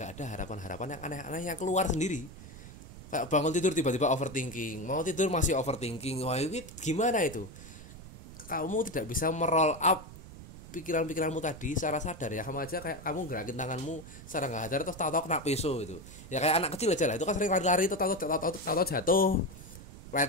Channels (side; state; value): right; noise; rumble, 15 dB below the sound